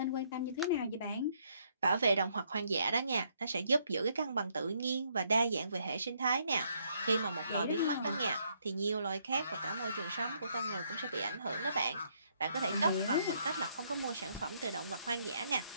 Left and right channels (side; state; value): both; inverted; correlation -0.71